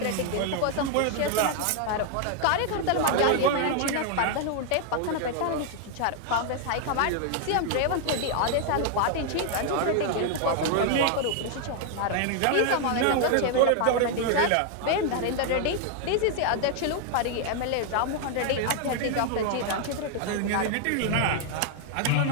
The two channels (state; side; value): different; both; correlation 0.00